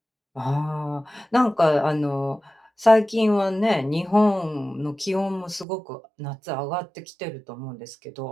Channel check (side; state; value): left; drops out; at 5.7 s